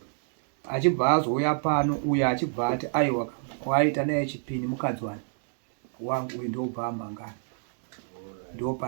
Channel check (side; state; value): left; silent; 59 dB below the other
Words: Achibva azouya pano uyo achibva ati aiwa waita naye chipini mukadzi wangu uyu ndobva amangana. Ndo